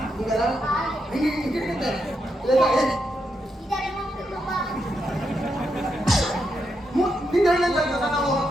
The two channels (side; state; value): both; normal; correlation 0.82